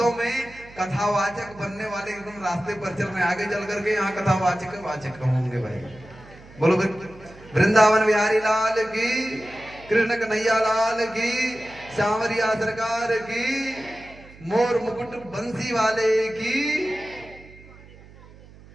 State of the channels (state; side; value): noise; right; hum, 21 dB below the sound